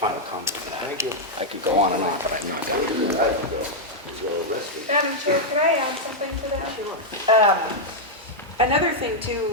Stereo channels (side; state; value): both; normal; correlation -0.03